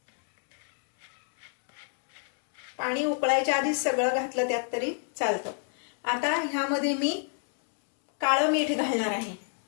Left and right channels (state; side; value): silent; right; 56 dB below the other